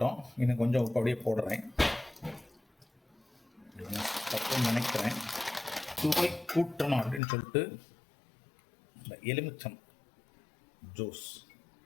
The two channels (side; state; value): right; drops out; at 7.2 s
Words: இன்னும் கொஞ்சம் உப்பு அப்படியே போடுறேன். தப்புன்னு நினைக்கிறேன். சுவை கூட்டணும் அப்படின்னு சொல்லிட்டு இந்த எலுமிச்சம் ஜூஸ்.